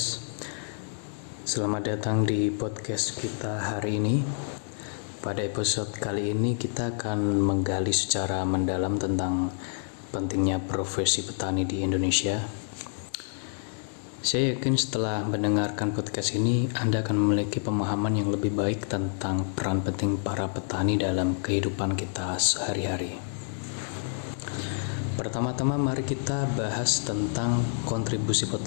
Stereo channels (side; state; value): right; silent; digital silence